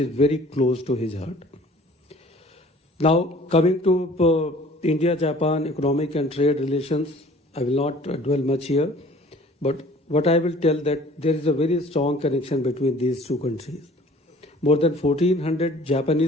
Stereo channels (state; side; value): normal; both; correlation 0.51